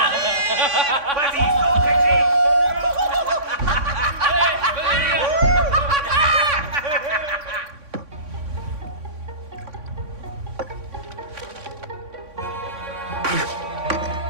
Vas-y, saute, Reggie.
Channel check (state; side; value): late; left; 3.6 ms